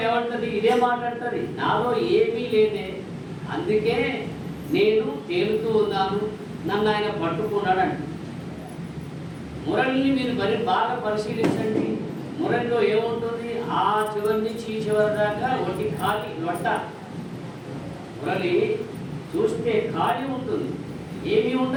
ఏమంటుంది, ఇదే మాట్లాడుతుంది, నాలో ఏమీ లేదే, అందుకే నేను తేలుతూ ఉన్నాను, నన్ను ఆయన పట్టుకున్నాడు అంట. మురళిని మీరు బాగా పరిశీలించండి. మురళిలో ఏముంటుంది, ఆ చివరి నుంచి ఈ చివరి దాకా ఒకటి ఖాళీ లొట్ట. మురళి చూస్తే ఖాళీ ఉంటుంది, ఏమీ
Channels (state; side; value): identical; both; correlation 1.00